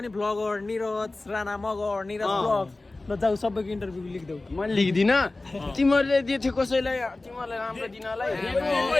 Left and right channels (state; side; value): quieter; right; 3.1 dB